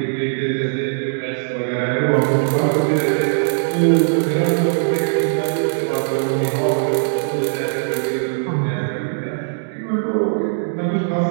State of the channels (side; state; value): left; silent; digital silence